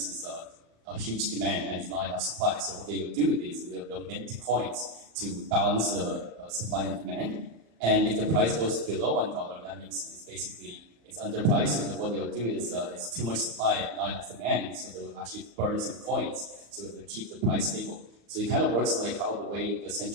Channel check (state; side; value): late; left; 35 ms